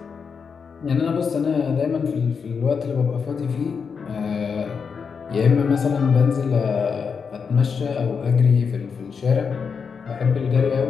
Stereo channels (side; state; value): right; quieter; 5.9 dB